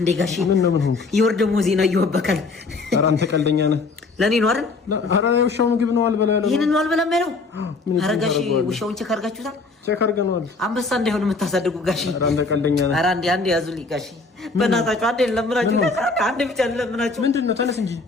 ጋሺ ምን ሆንኩ ይወርደሞ ዜና ይወበካል ኧረ አንተ ቀልደኛ ነህ ለኔ ነው አይደል ኧረ ውሻው ምግብ ነው አልበላ ያለው ይሄን ነው አልበላም ያለው ኧረ ጋሺ ውሻውን ቼክ አድርጋችሁታል ቼክ አድርገናል አንበሳ እንዳይሆን የምታሳድጉ ጋሺ ኧረ አንተ ቀልደኛ ነህ ኧረ አንዴ ያዙልኝ ጋሺ በእናታችሁ አንዴ ለምናችሁ አንዴ ብቻ ለምናችሁ ምንድነው ተነስ እንጂ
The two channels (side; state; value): right; quieter; 3.9 dB